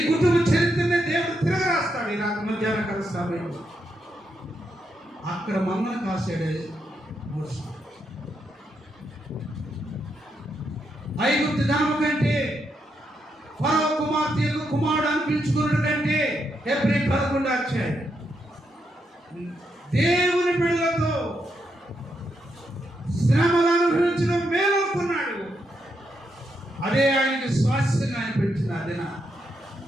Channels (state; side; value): normal; both; correlation 0.81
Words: కుటుంబ చరిత్రనే దేవుడు తిరగరాస్తాడు. ఈ రాత్రి మధ్యాహ్న కాల సమయంలో అక్కడ మమ్మల్ని కాసాడే మోషే. ఐగుప్తు ధనము కంటే, ఫరో కుమార్తె కుమారుడు అనిపించుకున్నట్టు కంటే, హెబ్రీ 11వ అధ్యాయం దేవుని బిడ్డలతో శ్రమలు అనుభవించడం మేలనుకున్నాడు. అదే ఆయనకి స్వాస్థ్యంగా అనిపించిన అదిన.